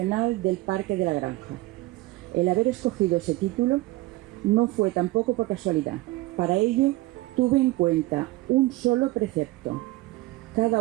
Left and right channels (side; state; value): left; quieter; 19.4 dB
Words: del Parque de la Granja. El haber escogido ese título no fue tampoco por casualidad. Para ello tuve en cuenta un solo precepto.